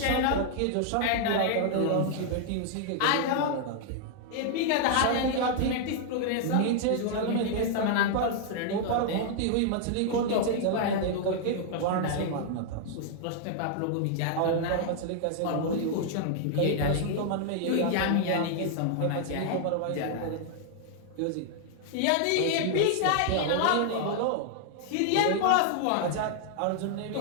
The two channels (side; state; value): both; different; correlation 0.00